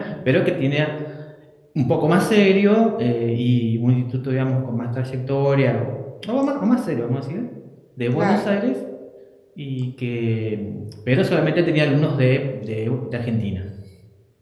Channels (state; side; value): identical; both; correlation 1.00